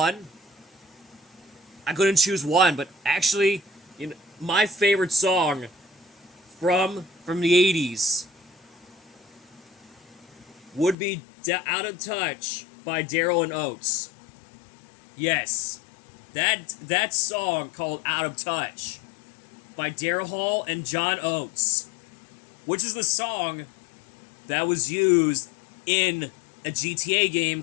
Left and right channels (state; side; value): drops out; right; at 11.0 s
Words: I couldn't choose one, but actually, you know, my favorite song from the 80s would be Out of Touch by Daryl and Oates. Yes, that song called Out of Touch by Daryl Hall and John Oates, which is the song that was used in a GTA game